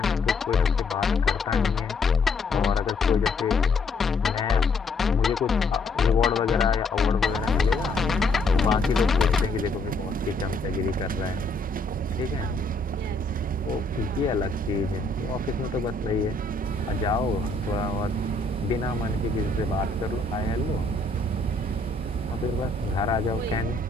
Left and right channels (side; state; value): right; quieter; 3.0 dB